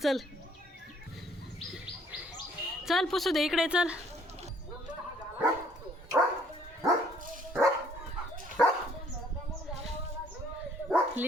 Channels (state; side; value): normal; both; correlation 0.62